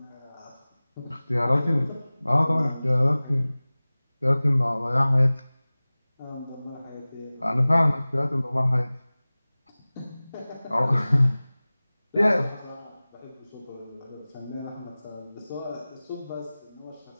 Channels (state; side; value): inverted; both; correlation -0.99